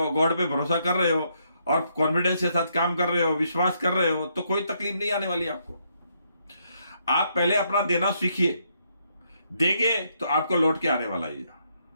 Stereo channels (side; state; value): both; inverted; correlation -0.74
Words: गॉड पे भरोसा कर रहे हो और कॉन्फिडेंस के साथ काम कर रहे हो, विश्वास कर रहे हो, तो कोई तकलीफ नहीं आने वाली आपको। आप पहले अपना देना सीखिए। देंगे तो आपको लौट के आने वाला ही है।